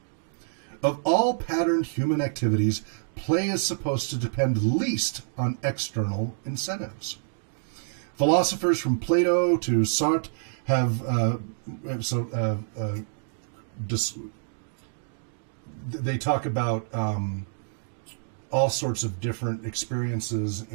Of all patterned human activities, play is supposed to depend least on external incentives. Philosophers from Plato to Sartre they talk about all sorts of different experiences,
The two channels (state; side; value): silent; left; digital silence